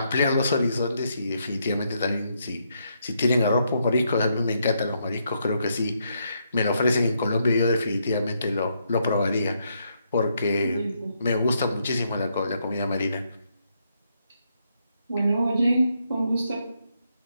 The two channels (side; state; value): both; inverted; correlation -0.77